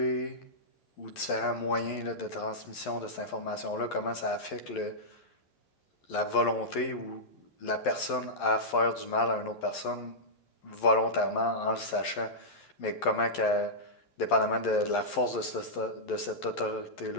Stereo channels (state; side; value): late; right; 11 ms